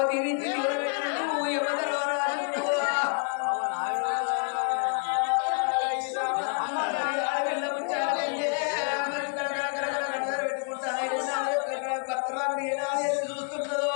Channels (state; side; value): quieter; right; 39.5 dB